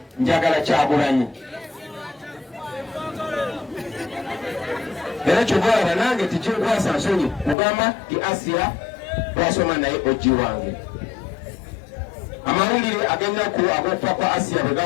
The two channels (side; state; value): right; drops out; at 7.6 s